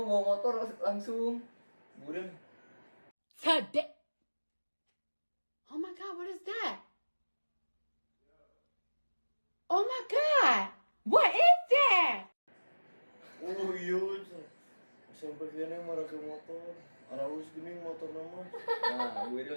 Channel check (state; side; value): inverted; both; correlation -1.00